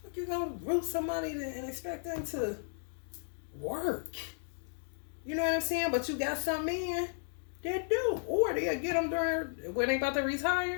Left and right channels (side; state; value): right; silent; digital silence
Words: you gonna root somebody and expect them to work? You know what I'm saying? But you got some men that do. Or they'll get them during when they about to